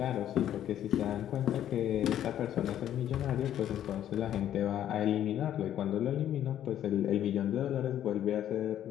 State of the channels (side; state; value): right; quieter; 11.1 dB